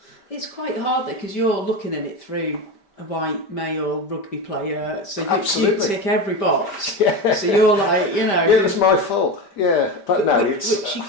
It's quite hard though, because you're looking at it through a white male rugby player, so you tick every box. Yeah. So you're like, you know... Yeah, it's my fault. Yeah, but no, which you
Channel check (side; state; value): right; late; 5.1 ms